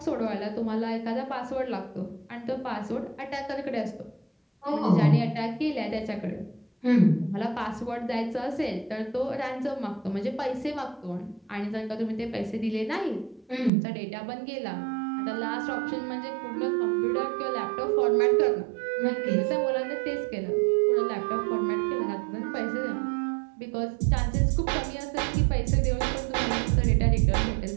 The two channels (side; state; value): left; drops out; at 13.7 s